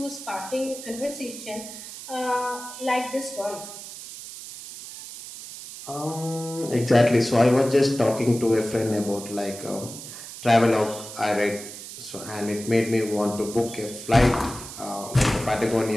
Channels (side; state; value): right; noise; hiss, 12 dB below the sound